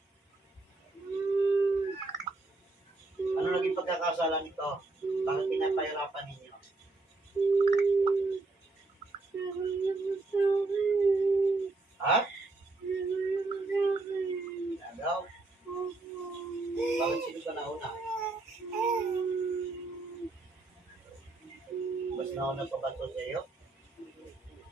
Ano naging pagkakasala nito? Bakit pinapahirapan ninyo? nagpapautos sa iyo?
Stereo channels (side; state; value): left; quieter; 3.4 dB